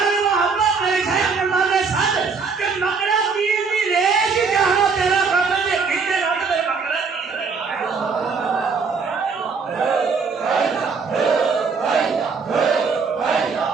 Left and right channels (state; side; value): quieter; left; 5.1 dB